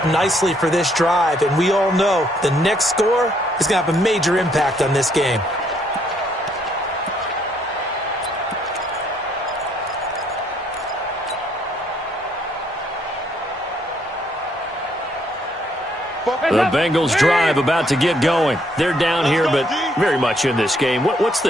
nicely for this drive, and we all know the next score is going to have a major impact on this game. The Bengals drive about to get going. They're down here, but very much in this game. What's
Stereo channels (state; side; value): normal; both; correlation 0.69